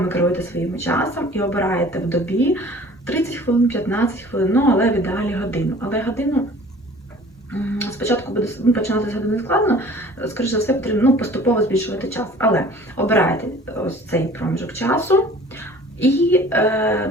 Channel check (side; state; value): both; normal; correlation 0.48